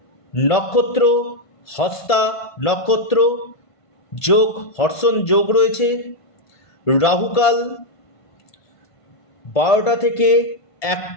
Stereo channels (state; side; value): late; right; 1.5 ms